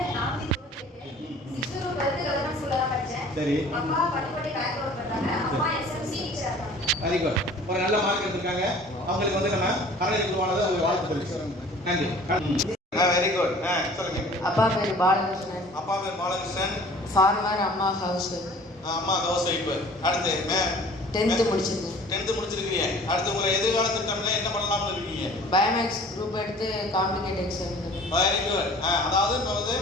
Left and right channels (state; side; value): normal; both; correlation 0.48